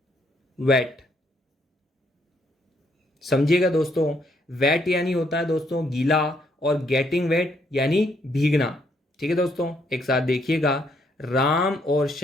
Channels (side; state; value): both; normal; correlation 0.71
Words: वेट। समझिएगा दोस्तों, वेट यानी होता है दोस्तों गीला, और गेटिंग वेट यानी भीगना। ठीक है दोस्तों, एक साथ देखिएगा, राम और